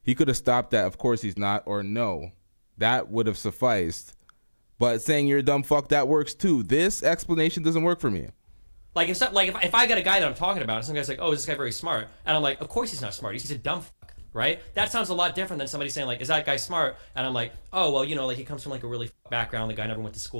he could have stopped that. Of course he's not, or no, that would have sufficed. But saying you're a dumb fuck, that works too. This explanation doesn't work for me. Like if I got a guy that I'm talking about, and some guy's like, "Oh, is this guy very smart?" And I'm like, "Of course he's not smart. He's a dumb fuck." Right? That sounds a lot different than somebody saying like, "Is that guy smart?" And I'm like, "Oh, well, you know, like he comes from like a really background. The guy never went to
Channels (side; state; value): both; inverted; correlation -1.00